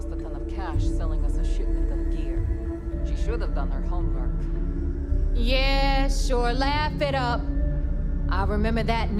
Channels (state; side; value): identical; both; correlation 1.00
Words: a ton of cash selling us a shipment of gear. She should have done her homework. Yeah, sure, laugh it up. I'll remember that